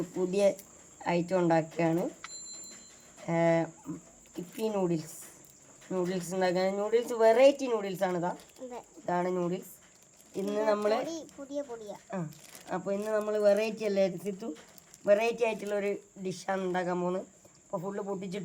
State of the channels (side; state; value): both; identical; correlation 1.00